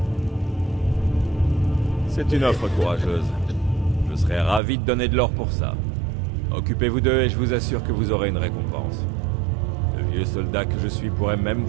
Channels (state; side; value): drops out; left; at 4.6 s